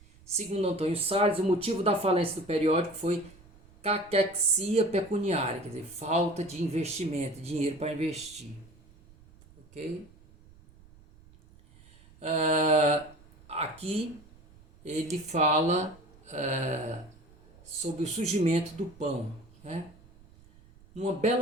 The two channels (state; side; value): noise; right; rumble, 25 dB below the sound